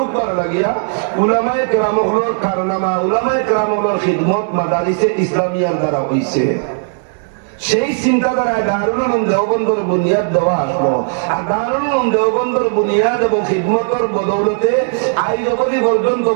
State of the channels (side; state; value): left; silent; 66 dB below the other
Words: লাগিয়া উলামায়ে কেরামগুলোর কারনামা, উলামায়ে কেরামগুলোর খিদমত মাদারিসে ইসলামিয়ার দ্বারা হইছে। সেই চিন্তাধারায় দারুল উলুম দেওবন্দর বুনিয়াদ দেওয়া আসলো। আর দারুল উলুম দেওবন্দর বুনিয়াদ এবং খিদমতের বদৌলতে আজ অবধি পর্যন্ত